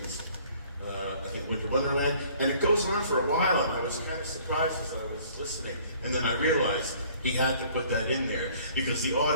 I think, Winter Wonderland, and it goes on for a while, and I was kind of surprised as I was listening. And then I realized he had to put that in there, because the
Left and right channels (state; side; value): inverted; both; correlation -0.55